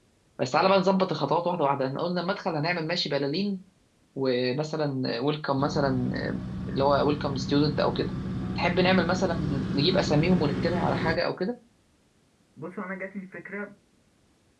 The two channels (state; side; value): identical; both; correlation 1.00